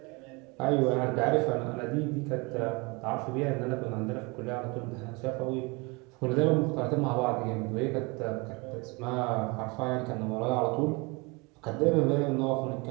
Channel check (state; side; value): quieter; left; 27.6 dB